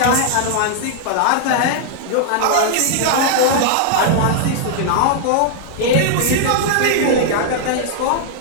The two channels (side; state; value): both; different; correlation -0.01